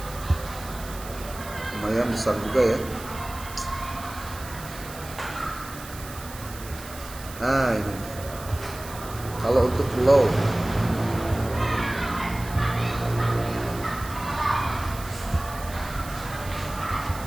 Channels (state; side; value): noise; right; hiss, 15 dB below the sound